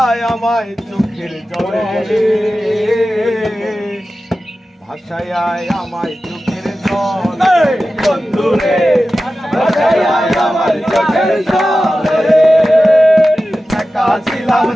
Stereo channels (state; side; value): normal; both; correlation 0.94